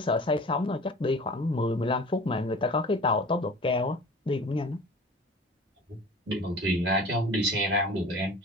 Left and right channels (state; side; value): normal; both; correlation 0.41